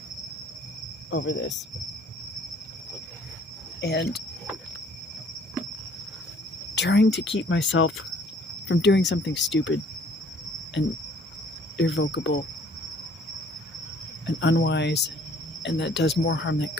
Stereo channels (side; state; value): both; normal; correlation 0.57